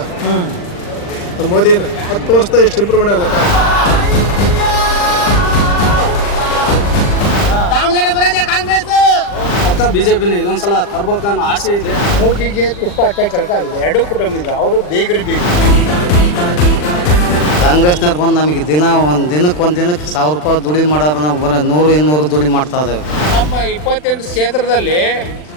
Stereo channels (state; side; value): late; right; 40 ms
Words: ಮೋದಿನ 10 ವರ್ಷದ ಎಷ್ಟು ಇಂಪ್ರೂವ್ಮೆಂಟ್ ಅಲ್ಲ. ಪಕ್ಕ ಬಿಜೆಪಿನ ಇದೊಂದ್ಸಲ ತರ್ಬೇಕನ್ನೋ ಆಸೆ ಇದೆ. ಮೂಗಿಗೆ ತುಪ್ಪ ಹಚ್ಚ ಕೆಲಸ ಆಗಿದೆ. ಎರಡು ಕುಟುಂಬ ಅವರು ಬೇಗರಿ ಬೇಕು. ಕಾಂಗ್ರೆಸ್ನವ್ರು ಬಂದು ನಮಗೆ ಒಂದು ದಿನಕ್ಕೆ 1000 ರೂಪಾಯಿ ದುಡಿ ಮಾಡೋರು ನಾವು 100-200 ದುಡಿ ಮಾಡ್ತಾ ಇದ್ದೇವೆ. ನಮ್ಮ 28 ಕ್ಷೇತ್ರದಲ್ಲಿ